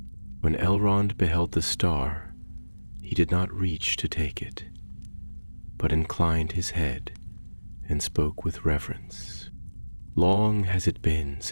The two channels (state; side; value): inverted; both; correlation -1.00